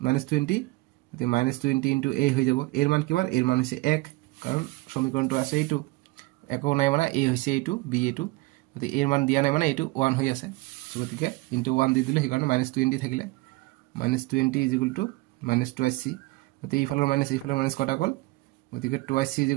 মাইনাস 20 গতি মাইনাস 20 * a হৈ যাব এৰ মান কিমান এৰ মান হৈছে 1 কাৰণ সমীকৰণটো আছে এইটো একো নাই মানে a হৈছে এইটো b এইটো গতি এর মান দিয়া নাই মানে এইটো 1 হৈ আছে গতিকে * 1 দি দিলে হেকাৰণে মাইনাস 20 থাকিলে minus 20 is equal two minus 2c গতি ইফালৰ মাইনাস কটা গল গতিকে 2c ইজ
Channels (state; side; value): quieter; left; 21.9 dB